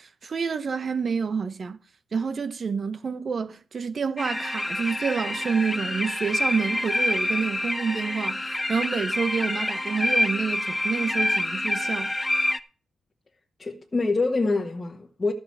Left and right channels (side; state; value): both; normal; correlation 0.91